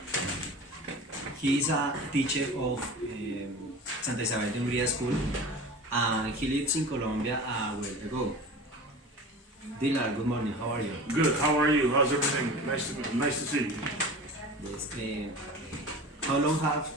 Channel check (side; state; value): both; normal; correlation 0.36